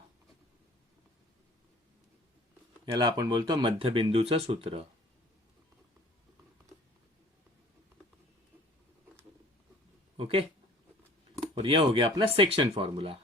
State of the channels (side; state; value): both; normal; correlation 0.50